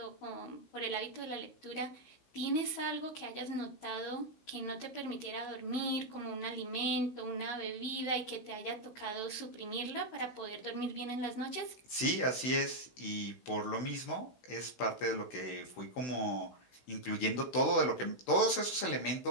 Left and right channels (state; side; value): late; right; 16 ms